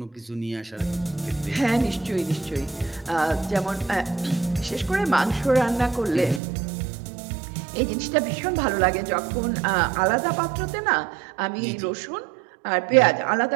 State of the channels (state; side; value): drops out; left; at 6.4 s